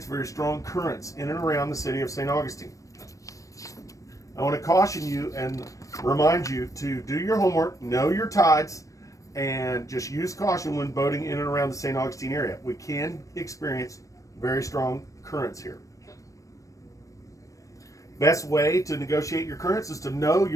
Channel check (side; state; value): right; late; 0.16 ms